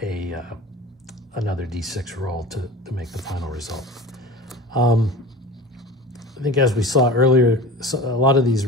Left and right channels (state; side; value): normal; both; correlation 0.36